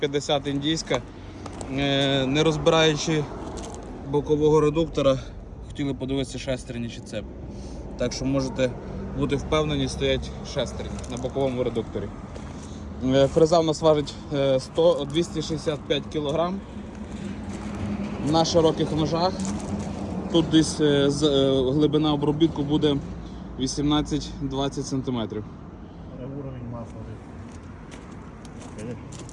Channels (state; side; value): identical; both; correlation 1.00